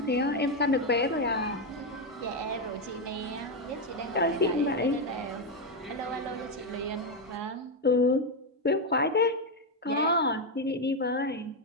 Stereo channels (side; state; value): both; normal; correlation 0.06